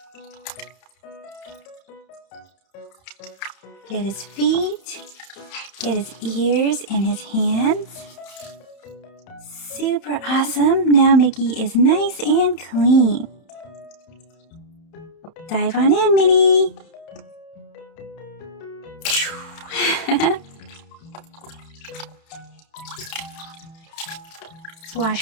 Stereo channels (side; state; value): right; late; 30 ms